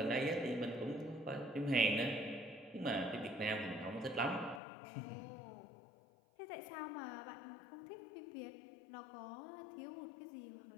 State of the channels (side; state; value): right; drops out; at 4.6 s